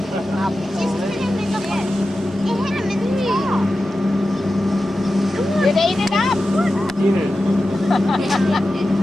think I'll be Just put him in the bed. It hit him in the knee. It ate it up. Eat it.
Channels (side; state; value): both; normal; correlation 0.93